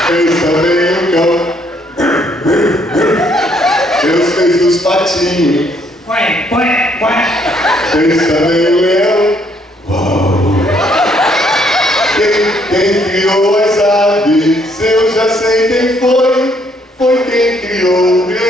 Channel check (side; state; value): both; normal; correlation 0.68